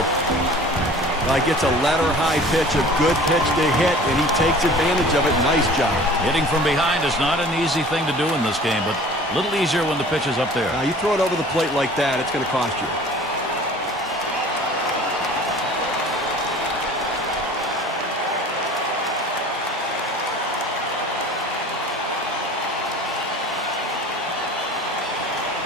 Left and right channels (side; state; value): both; normal; correlation 0.45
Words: Like it's a letter-high pitch, a good pitch to hit, and he takes advantage of it. Nice job. Hitting from behind is not an easy thing to do in this game, but a little easier when the pitch is up there. Now, you throw it over the plate like that, it's going to cost you.